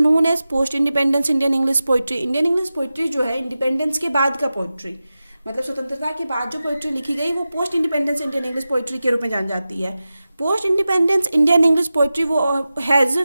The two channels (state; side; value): inverted; both; correlation -0.94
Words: as post independence Indian English poetry. Indian English poetry जो है इंडिपेंडेंस के बाद का पोइट्री, मतलब स्वतंत्रता के बाद जो पोइट्री लिखी गई, वो post independence Indian English poetry के रूप में जानी जाती है। Post independence Indian English poetry वो has